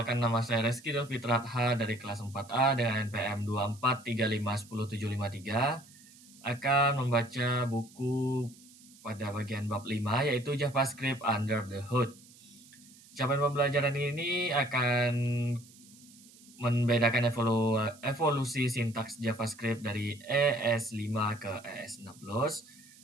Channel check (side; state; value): right; noise; hiss, 23 dB below the sound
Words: nama saya Reski Fitraha dari kelas 4A dengan NPM 24351073, akan membaca buku pada bagian bab 5, yaitu JavaScript Under the Hood. Capaian pembelajaran ini akan membedakan evolusi sintaks JavaScript dari ES5 ke ES6,